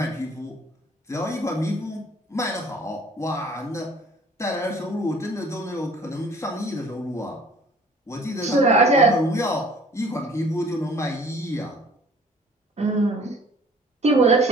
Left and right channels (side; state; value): both; normal; correlation 0.52